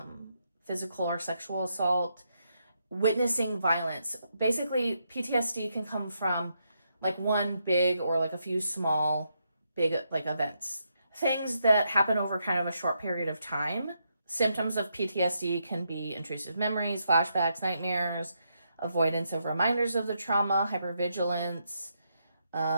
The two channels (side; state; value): both; inverted; correlation -0.80